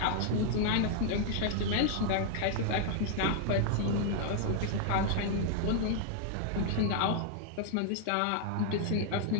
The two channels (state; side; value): different; both; correlation 0.00